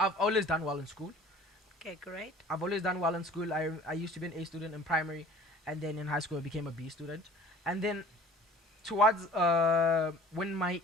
always done well in school. Okay, great. I've always done well in school. I used to be an A student in primary, and then in high school I became a B student. And then towards when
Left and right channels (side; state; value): both; normal; correlation 0.48